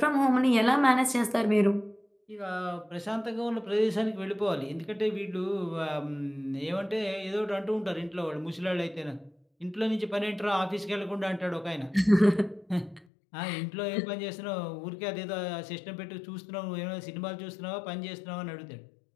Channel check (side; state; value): right; drops out; at 13.1 s